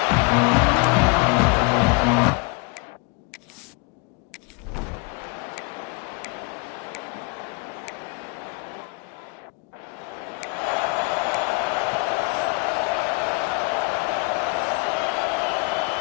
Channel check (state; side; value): quieter; right; 30.1 dB